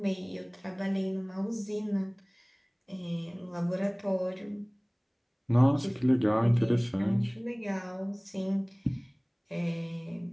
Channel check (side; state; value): both; identical; correlation 1.00